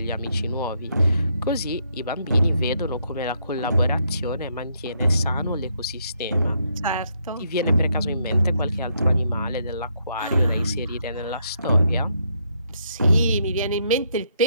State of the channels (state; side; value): inverted; both; correlation -0.74